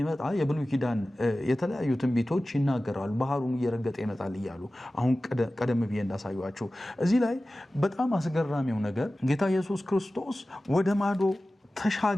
የብሉይ ኪዳን የተለያዩ ትንቢቶች ይናገራሉ። ባህሩን እየረገጠ ይመጣል እያሉ አሁን ቀደም ብዬ እንዳሳዩአችሁ። እዚህ ላይ በጣም አስገራሚው ነገር ጌታ ኢየሱስ ክርስቶስ ወደ ማዶ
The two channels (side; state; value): both; normal; correlation 0.96